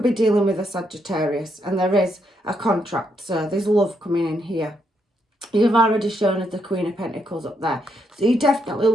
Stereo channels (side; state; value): both; normal; correlation 0.78